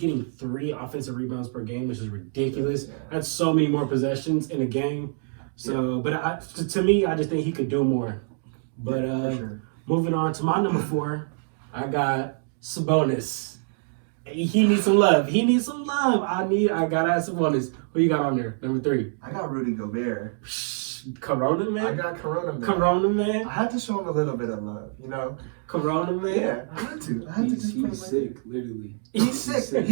3 offensive rebounds per game, which is ridiculous. Yeah. That's so many more possessions in a game. So, but to me, I just think he could do more. But For sure. moving on to my number 4, I got Sabonis. He needs some love. He needs some love. I gotta have Sabonis. Who you got on there? Number 3. I got Rudy Gobert. Corona I man. got Corona man. Corona man. I had to show him a little bit of love, you know. Corona man. Yeah, I had to. I had to just put him He's like sick, literally. He's sick.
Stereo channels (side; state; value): left; silent; 61 dB below the other